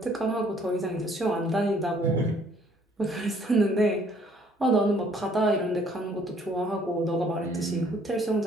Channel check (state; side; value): normal; both; correlation 0.61